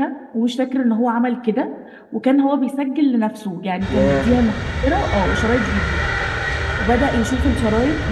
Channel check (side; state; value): both; identical; correlation 1.00